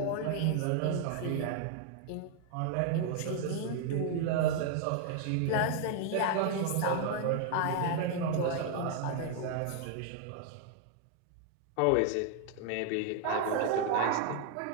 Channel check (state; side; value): different; both; correlation 0.00